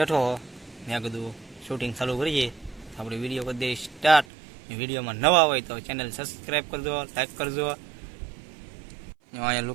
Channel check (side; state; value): left; drops out; at 4.2 s